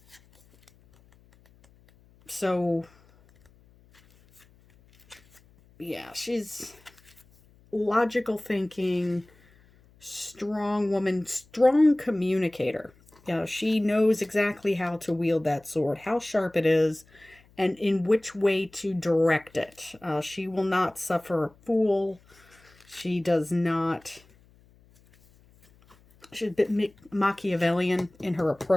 So yeah, she's logical thinking, strong woman, strong communicator. She knows exactly how to wield that sword, how sharp it is, and in which way to direct it. She will not suffer a fool. She's a bit Machiavellian in her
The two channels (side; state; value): left; noise; hum, 29 dB below the sound